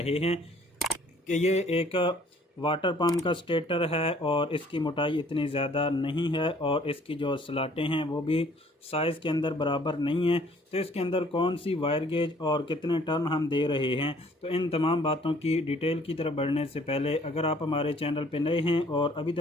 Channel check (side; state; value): both; normal; correlation 0.58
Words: हैं कि ये एक वाटर पंप का स्टेटर है और इसकी मोटाई इतनी ज़्यादा नहीं है और इसकी जो स्लाटें हैं वो भी साइज़ के अंदर बराबर नहीं है। तो इसके अंदर कौन सी वायर गेज और कितने टर्न हम दे रहे हैं, तो इन तमाम बातों की डिटेल की तरफ बढ़ने से पहले अगर आप हमारे चैनल पर नए हैं और अभी